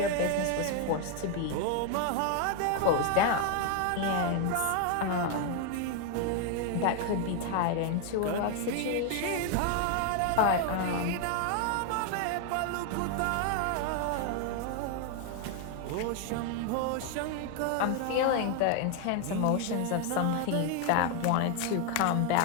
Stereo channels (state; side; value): different; both; correlation 0.01